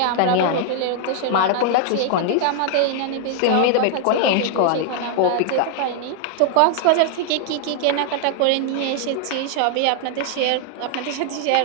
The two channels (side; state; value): both; different; correlation 0.00